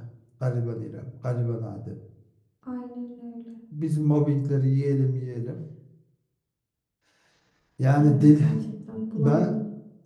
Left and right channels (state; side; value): identical; both; correlation 1.00